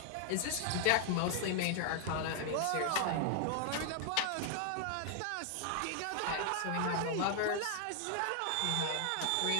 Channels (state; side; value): different; both; correlation 0.00